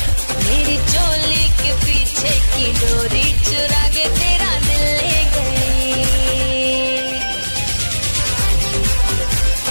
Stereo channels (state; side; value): inverted; both; correlation -1.00